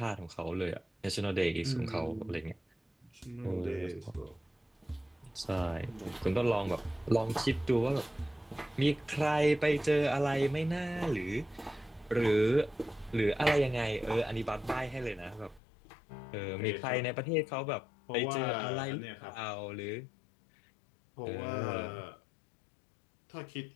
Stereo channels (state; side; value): drops out; right; at 15.6 s